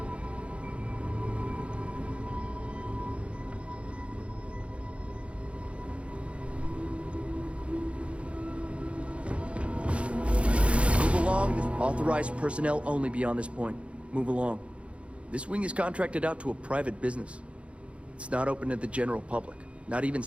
Authorized personnel only beyond this point. Move along. This wing is contracted out to a private business. It's not open to the general public, not even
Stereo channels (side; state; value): left; late; 0.061 ms